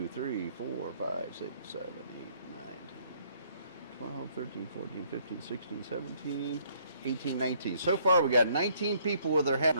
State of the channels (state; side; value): inverted; both; correlation -0.65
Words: 3, 4, 5, 6, 7, 8, 9, 10, 12, 13, 14, 15, 16, 17, 18, 19. So far we got 19 people with their hat in